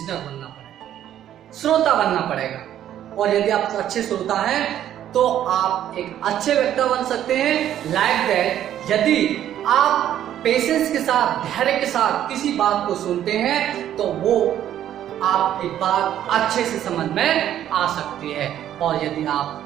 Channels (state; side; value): quieter; left; 11.2 dB